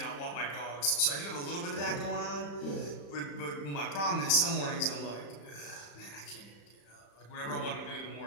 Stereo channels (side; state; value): right; late; 35 ms